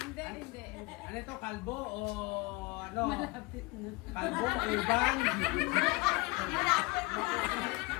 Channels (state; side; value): quieter; right; 24.4 dB